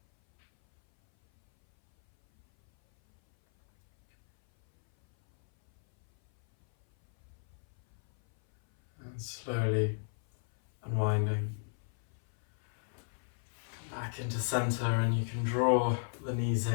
And slowly unwinding. Come back into center, and you can draw the knees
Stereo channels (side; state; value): right; silent; 56 dB below the other